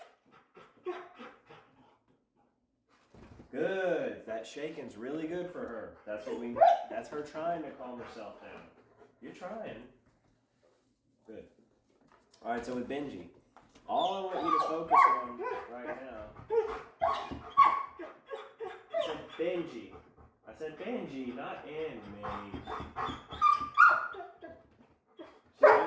Okay? Good. That shaking's really good for her. That's her trying to calm herself down. You're trying. Good. Alright, so with Benji, all I want you to focus on right now. I said Benji, not Emmy.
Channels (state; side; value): identical; both; correlation 1.00